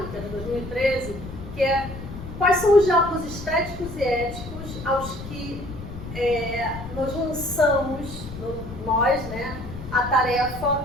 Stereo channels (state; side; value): noise; left; rumble, 11 dB below the sound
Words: que é de 2013, que é quais são os diálogos estéticos e éticos aos que nós lançamos, nós, né, a tarefa